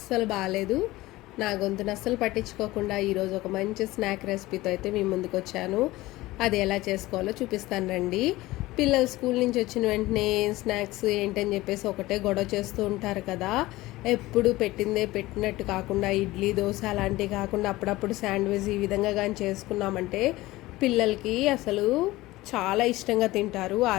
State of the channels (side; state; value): right; quieter; 18.5 dB